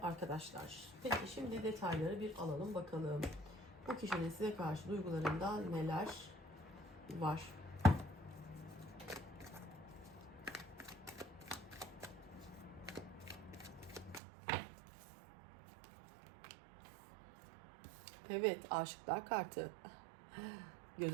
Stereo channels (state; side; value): drops out; left; at 14.2 s